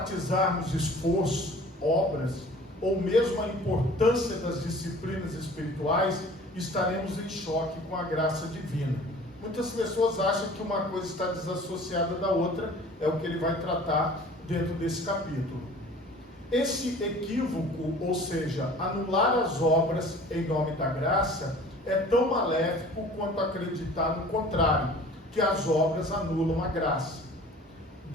esforço, obras, ou mesmo a importância das disciplinas espirituais, estaremos em choque com a graça divina. Muitas pessoas acham que uma coisa está desassociada da outra, é o que ele vai tratar dentro desse capítulo. Esse equívoco, ou seja, anular as obras em nome da graça, é tão maléfico quanto acreditar no contrário, que as obras anulam a graça.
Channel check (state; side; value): normal; both; correlation 0.46